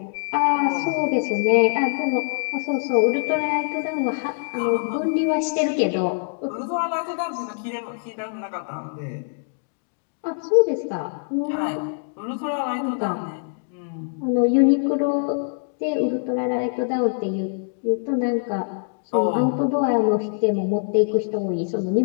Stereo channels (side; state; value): right; silent; digital silence